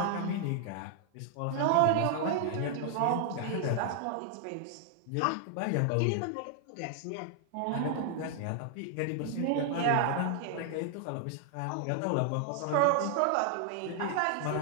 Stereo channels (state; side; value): different; both; correlation 0.00